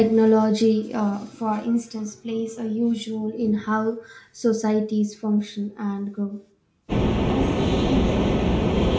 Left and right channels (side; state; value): both; identical; correlation 1.00